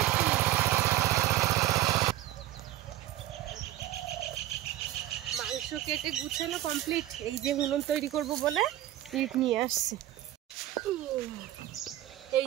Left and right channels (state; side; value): quieter; left; 13.9 dB